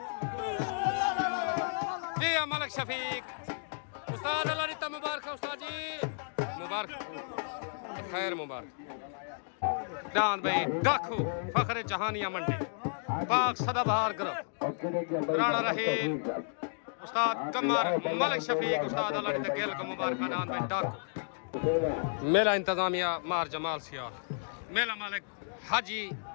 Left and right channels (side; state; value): right; silent; digital silence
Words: जी मलिक शफीक उस्ताद अल्लाह रिता मुबारक उस्ताद जी मुबारक खैर मुबारक जान भाई डाकू फखरे जहानिया मंडी पाक सदाबहार करो राणा रहील उस्ताद कमर मलिक शफीक उस्ताद अल्लाह रिता गेल का मुबारक जान भाई डाकू मेला इंतजामिया मार जमाल सियाल मेला मालिक हाजी